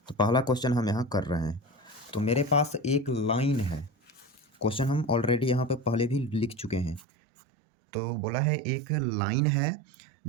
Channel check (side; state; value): left; drops out; at 7.0 s